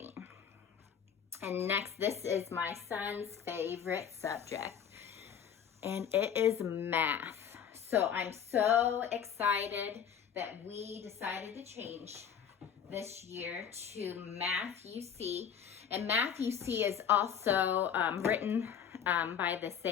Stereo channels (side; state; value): right; quieter; 8.1 dB